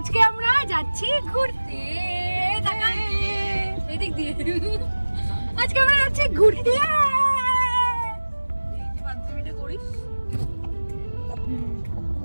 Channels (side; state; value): both; inverted; correlation -1.00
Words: আমরা যাচ্ছি ঘুরতে। এদিক দিয়ে আজকে আমরা যাচ্ছি ঘুরতে।